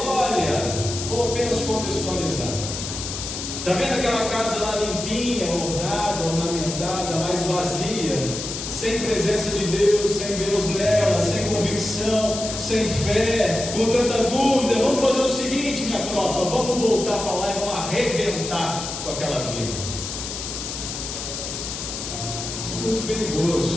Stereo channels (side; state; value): left; noise; hiss, 6 dB below the sound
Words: vou apenas contextualizar, está vendo aquela casa lá limpinha, ornada, ornamentada, mas vazia, sem presença de Deus, sem Deus nela, sem convicção, sem fé, com tanta dúvida? Vamos fazer o seguinte, minha tropa, vamos voltar para lá e vamos arrebentar com aquela vida. Isso é muito